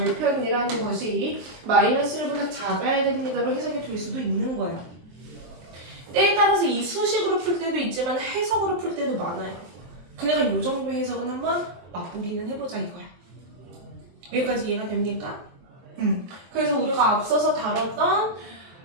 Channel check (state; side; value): late; left; 23 ms